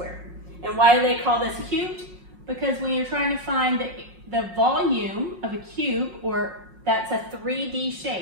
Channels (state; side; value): late; left; 5.5 ms